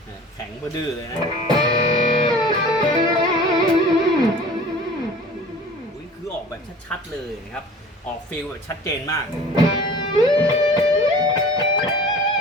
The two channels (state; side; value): normal; both; correlation 0.44